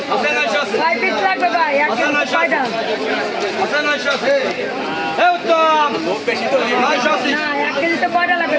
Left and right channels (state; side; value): identical; both; correlation 1.00